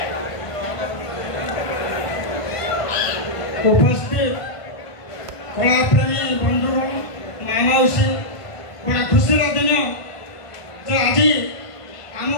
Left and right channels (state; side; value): late; right; 1.5 ms